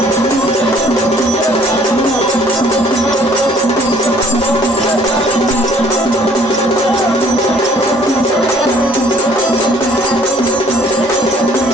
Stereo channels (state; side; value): normal; both; correlation 0.59